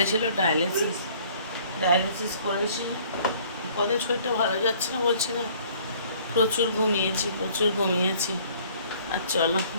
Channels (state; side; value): inverted; both; correlation -0.56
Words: ছিল ডায়ালিসিস করেছি। কদিন শরীরটা ভালো যাচ্ছে না, বলছি না, প্রচুর ঘুমিয়েছি। আর চলো